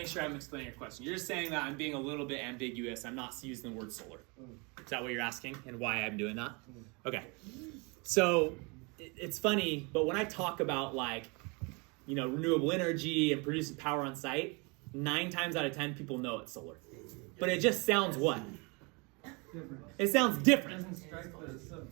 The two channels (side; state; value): left; quieter; 30.1 dB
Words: sure I'm explaining your question. You're just saying that I'm being a little bit ambiguous. I'm not using the word solar. Is that what you're asking, and why I'm doing that? Okay. So it's funny, but when I talk about renewable energy and producing power on site, 9 times out of 10 people know it's solar. But it just sounds what? It sounds different.